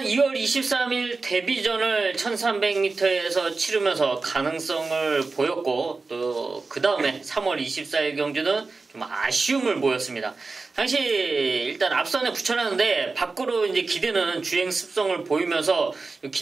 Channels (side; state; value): left; quieter; 4.0 dB